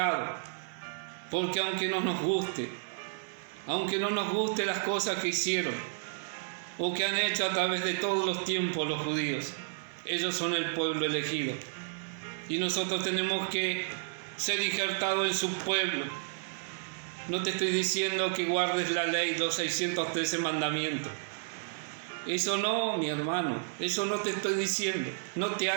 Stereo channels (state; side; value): silent; left; digital silence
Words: porque aunque no nos guste las cosas que hicieron o que han hecho a través de todos los tiempos los judíos, ellos son el pueblo elegido y nosotros tenemos que ser injertados en su pueblo. No te estoy diciendo que guardes la ley, los 613 mandamientos. Eso no, mi hermano, eso no te estoy diciendo. No te